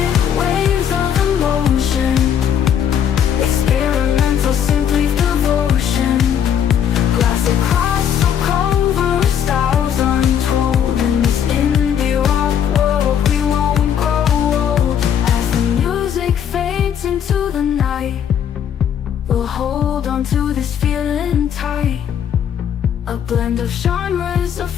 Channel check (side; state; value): right; quieter; 8.8 dB